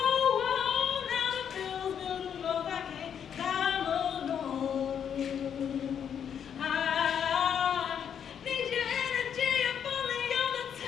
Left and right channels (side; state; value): right; quieter; 8.3 dB